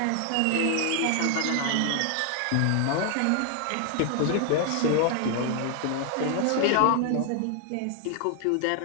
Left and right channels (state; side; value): different; both; correlation 0.00